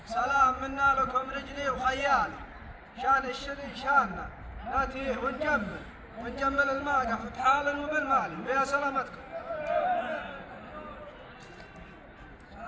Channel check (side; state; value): both; identical; correlation 1.00